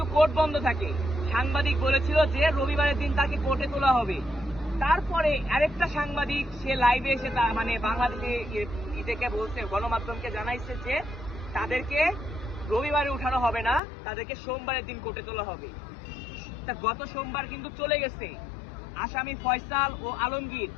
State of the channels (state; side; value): drops out; right; at 13.8 s